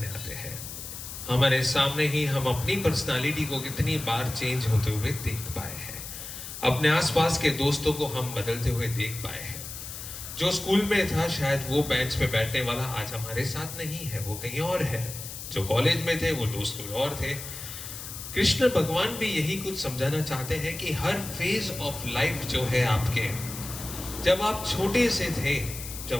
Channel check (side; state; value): left; noise; hiss, 10 dB below the sound